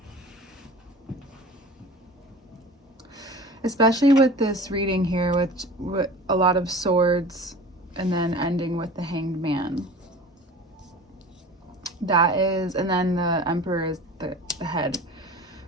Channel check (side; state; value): both; normal; correlation 0.39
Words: Especially with this reading here with a lot of swords and then ending with the Hanged Man. That is, and then the Emperor is the head.